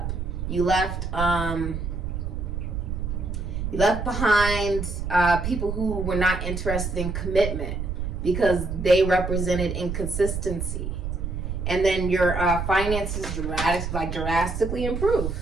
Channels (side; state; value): right; noise; rumble, 4 dB below the sound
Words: You left behind people who were not interested in commitment because they represented inconsistency. And then your finances drastically improve.